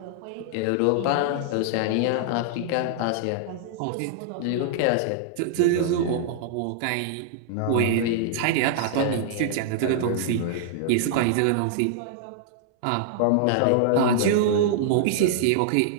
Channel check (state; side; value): different; both; correlation -0.01